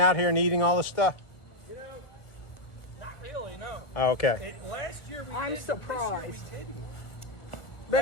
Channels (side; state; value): right; late; 1.4 ms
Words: here and eating all this stuff? Not really, no. Oh, okay. Last year we I'm did, surprised. This year we didn't. But